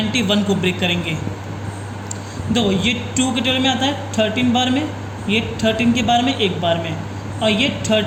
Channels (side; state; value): both; identical; correlation 1.00